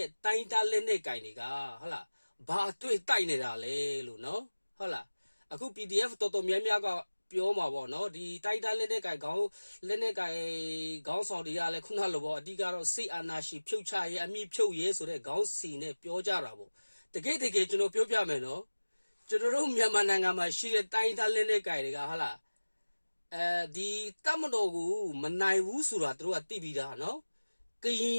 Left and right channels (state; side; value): inverted; both; correlation -1.00